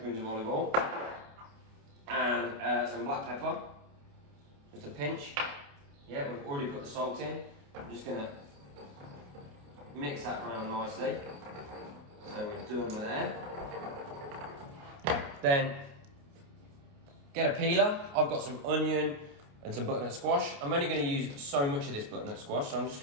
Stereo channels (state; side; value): late; left; 28 ms